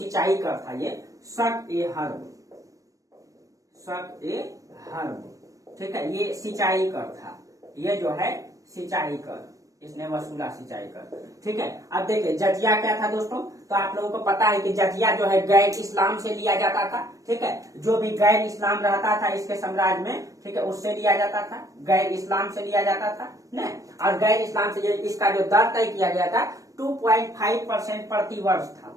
कर था ये शक ए हर्ब। ठीक है, ये सिंचाई कर था, ये जो है सिंचाई कर इसने वसूला, सिंचाई कर। ठीक है, अब देखिए जजिया क्या था दोस्तों, तो आप लोगों को पता है कि जजिया जो है गैर इस्लाम से लिया जाता था। ठीक है, जो भी गैर इस्लाम रहता था इसके साम्राज्य में, ठीक है, उससे लिया जाता था, गैर इस्लाम से लिया जाता था न। और गैर इस्लाम से इसका जो दर तय किया गया था 2.5% प्रति वर्ष था,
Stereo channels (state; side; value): late; left; 0.16 ms